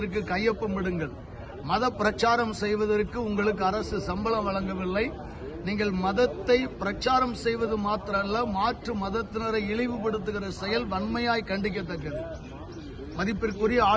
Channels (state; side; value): identical; both; correlation 1.00